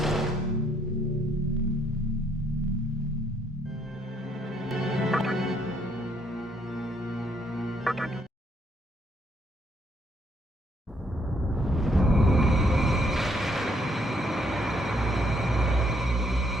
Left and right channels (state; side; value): normal; both; correlation 0.70